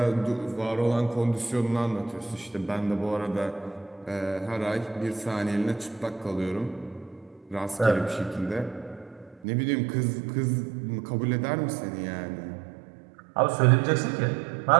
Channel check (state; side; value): drops out; left; at 9.5 s